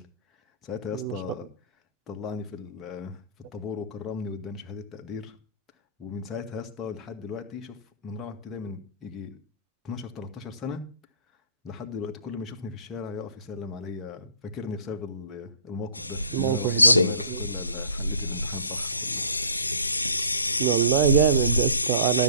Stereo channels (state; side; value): inverted; both; correlation -0.49